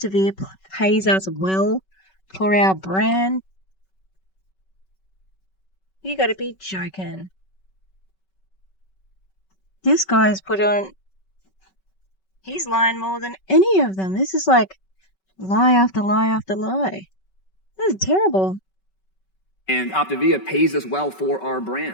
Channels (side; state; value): right; late; 5.3 ms